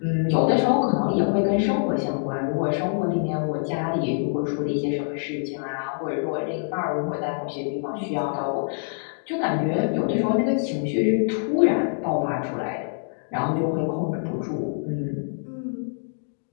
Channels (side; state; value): right; silent; digital silence